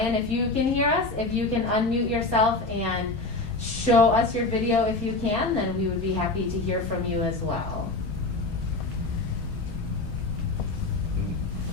if you can hear us, if you can unmute yourself and show us your video if you can, then we would be happy to hear from you as well.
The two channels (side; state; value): right; quieter; 3.2 dB